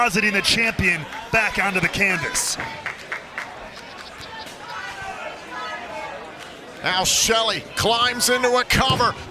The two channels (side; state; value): both; identical; correlation 1.00